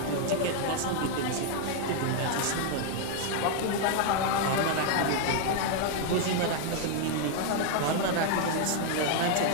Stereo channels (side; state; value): both; different; correlation 0.00